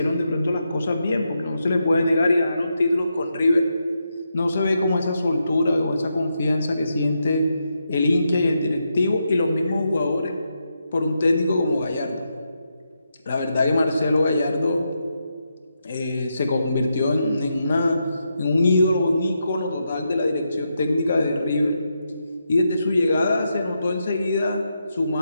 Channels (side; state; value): both; inverted; correlation -0.84